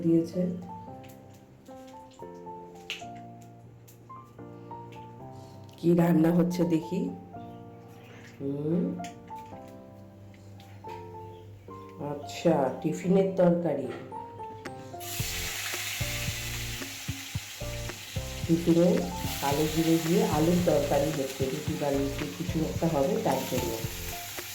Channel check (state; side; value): identical; both; correlation 1.00